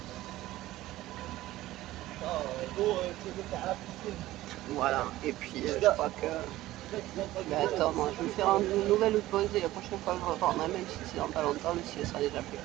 Voilà. Et puis, je crois que... Ben, attends, moi, je vais faire une nouvelle pause et la prochaine fois, je reprendrai, même si c'est dans pas longtemps, mais si elle sera déjà plus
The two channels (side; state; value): left; quieter; 16.1 dB